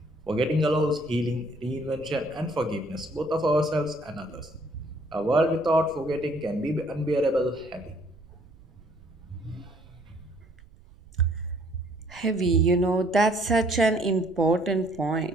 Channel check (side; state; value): right; noise; rumble, 24 dB below the sound